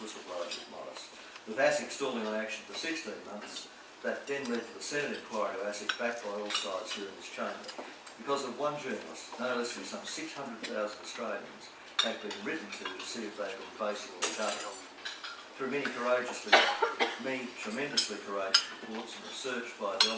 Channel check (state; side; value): identical; both; correlation 1.00